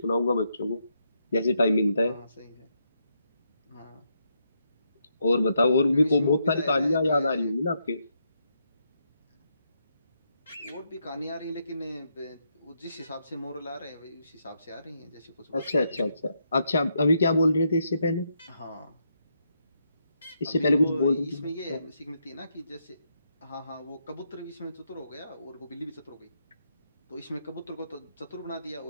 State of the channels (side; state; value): both; inverted; correlation -0.79